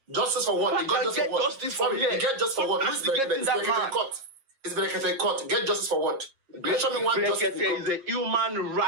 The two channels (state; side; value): late; left; 7.4 ms